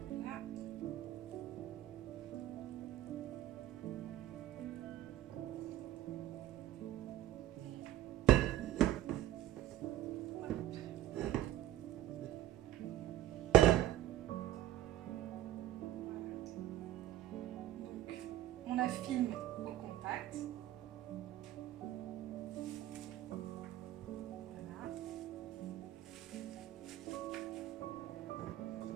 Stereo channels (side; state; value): left; quieter; 13.3 dB